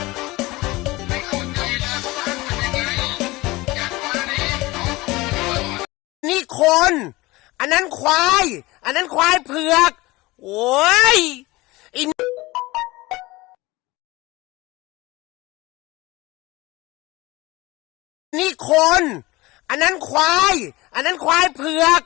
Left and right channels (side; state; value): right; quieter; 21.0 dB